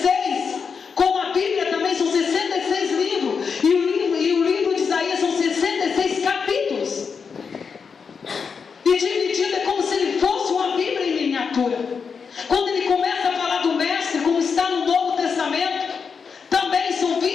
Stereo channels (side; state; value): right; quieter; 5.8 dB